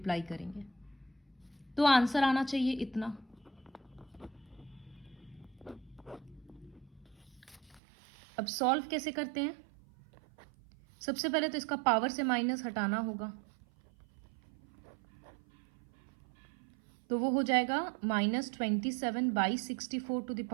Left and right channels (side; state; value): left; drops out; at 7.8 s